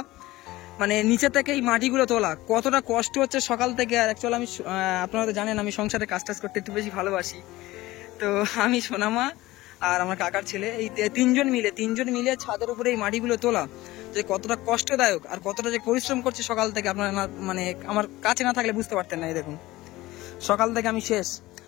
মানে নিচে থেকে এই মাটিগুলো তোলা কতটা কষ্ট হচ্ছে সকাল থেকে। আর অ্যাকচুয়ালি আমি, আপনারা তো জানেন, আমি সংসারে কাজ টাজ করতে একটু বেশি ভালোবাসি। তো আমি, সোনামা আর আমার কাকার ছেলে, এই তিনজন মিলে ছাদের উপরে এই মাটিগুলো তোলা যে কতটা কষ্টদায়ক আর কতটা যে পরিশ্রম করছে সকাল থেকে, আপনারা মানে আমার কাছে না থাকলে বুঝতে পারতেন না। এই দেখুন, সকাল থেকে আমি শেষ।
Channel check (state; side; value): quieter; right; 18.2 dB